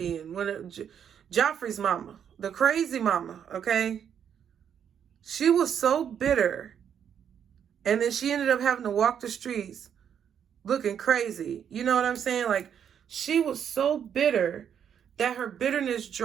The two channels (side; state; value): left; quieter; 8.4 dB